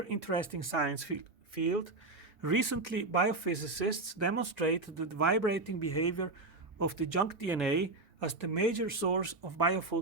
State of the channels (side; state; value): left; quieter; 3.3 dB